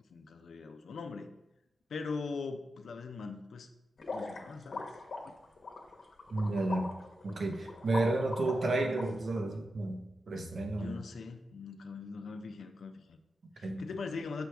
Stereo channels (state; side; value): normal; both; correlation 0.88